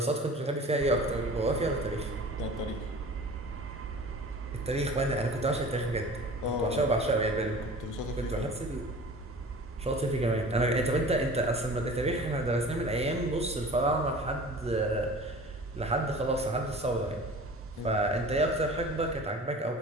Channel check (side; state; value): both; normal; correlation 0.41